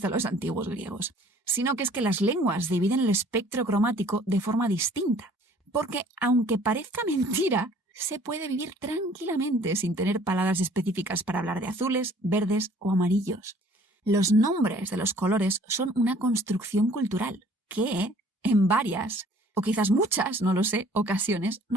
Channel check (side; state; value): both; normal; correlation 0.54